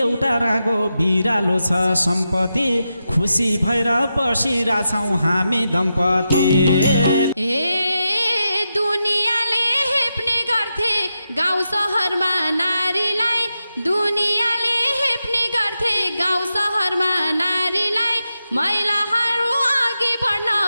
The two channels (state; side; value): inverted; both; correlation -0.88